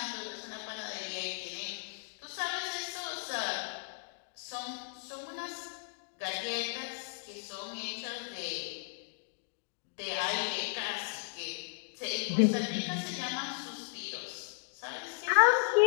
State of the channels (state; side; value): silent; right; digital silence